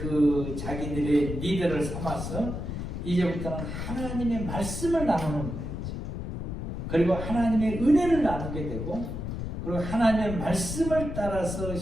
자기들의 리더를 삼아서 이제부터는 하나님의 말씀을 나누는 거예요. 그리고 하나님의 은혜를 나누게 되고, 그리고 하나님의 말씀을 따라서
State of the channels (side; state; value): left; noise; rumble, 5 dB below the sound